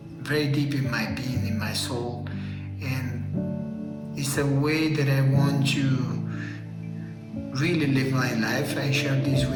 very deep in my being, in my soul, and it's a way that I want to really live my life. I share this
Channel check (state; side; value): identical; both; correlation 1.00